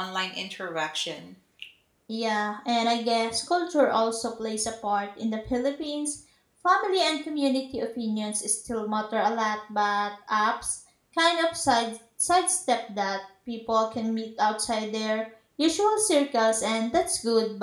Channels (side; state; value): both; identical; correlation 1.00